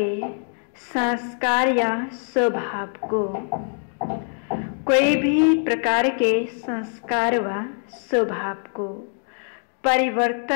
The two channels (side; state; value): right; silent; 57 dB below the other